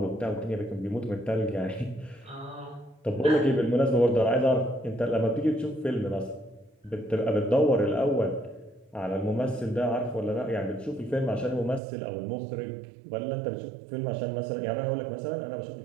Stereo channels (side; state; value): left; drops out; at 11.8 s